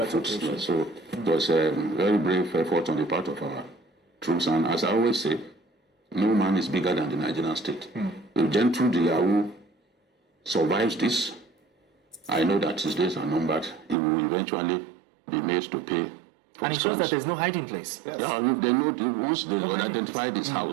foot. So it was a very brave effort on the part of our troops. And as I always say, no man is bigger than the Nigerian state. If Gentle the Yahoo survives this, I know that his days are numbered. He will eventually be made to pay. And it shows that there's no hiding place. Yeah, they know once they identified his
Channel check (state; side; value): drops out; left; at 14.0 s